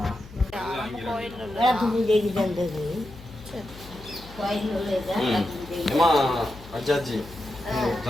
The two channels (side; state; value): left; noise; hum, 18 dB below the sound